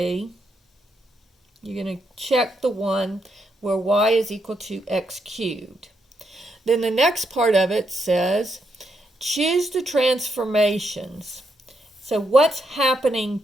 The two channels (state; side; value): normal; both; correlation 0.79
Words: you're going to check the one where y is equal to x cubed. Then the next part of it says, choose the transformations. So what's happening